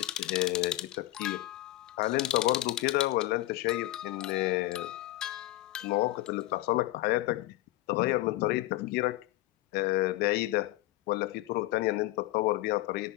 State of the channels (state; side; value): quieter; right; 17.0 dB